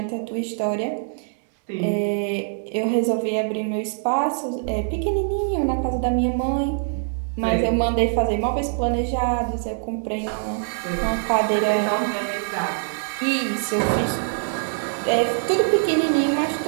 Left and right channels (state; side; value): silent; left; 62 dB below the other